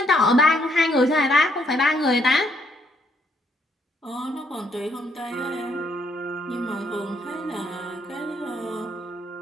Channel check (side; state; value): both; normal; correlation 0.71